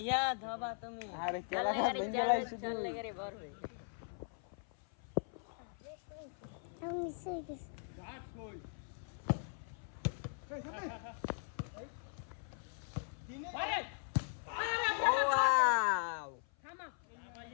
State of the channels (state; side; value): silent; right; 51 dB below the other